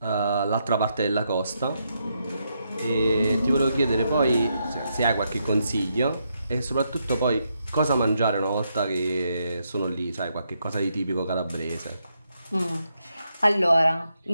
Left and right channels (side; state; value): both; inverted; correlation -0.80